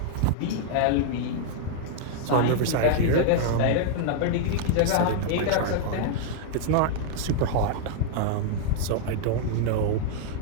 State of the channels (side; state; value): both; different; correlation -0.01